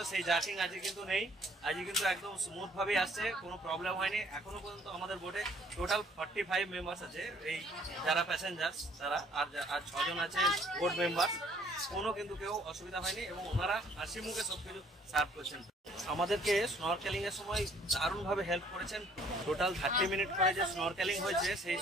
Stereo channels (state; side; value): normal; both; correlation 0.60